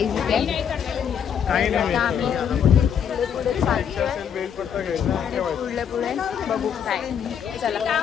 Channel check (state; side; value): quieter; right; 8.1 dB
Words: इथे. आता आम्ही पुढे चालतोय. पुढे बघू काय. चला